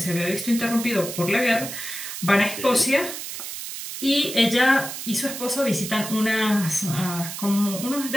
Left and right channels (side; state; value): right; noise; hiss, 8 dB below the sound